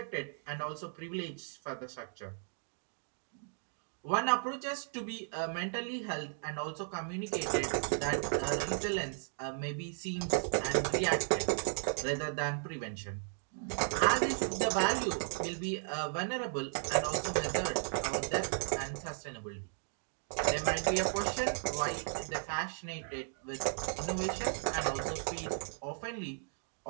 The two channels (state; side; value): silent; left; digital silence